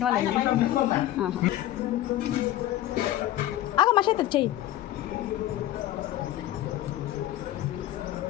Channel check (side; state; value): right; quieter; 13.8 dB